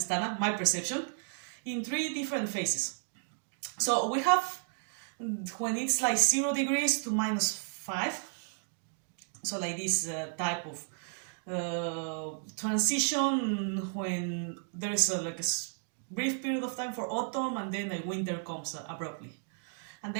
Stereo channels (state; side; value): silent; left; digital silence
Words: my perception, in 3 different phases. So we have when it's like 0 degrees to -5, so like this type of transition when there is like a brief period of time for autumn, and then winter comes abruptly. And